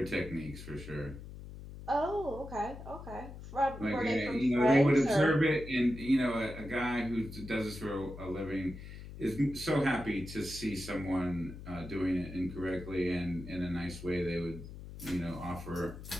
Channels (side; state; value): left; noise; hum, 12 dB below the sound